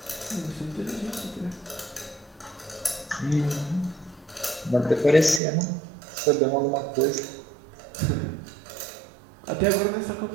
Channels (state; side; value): drops out; left; at 5.4 s